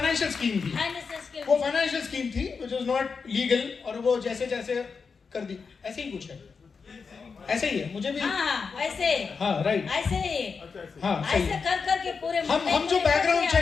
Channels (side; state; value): right; quieter; 5.3 dB